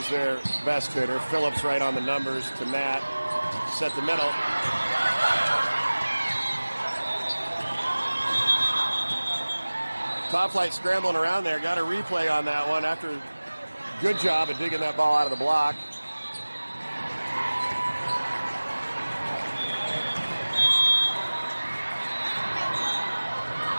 their best hitter. Phillips right on the numbers to Nat. Set the middle. Top Flight scrambling around there. Got a replay on that one after good job at digging that ball out of the block.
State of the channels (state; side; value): inverted; both; correlation -1.00